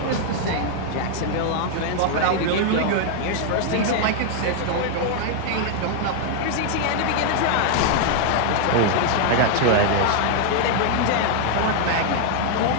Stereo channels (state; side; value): different; both; correlation 0.00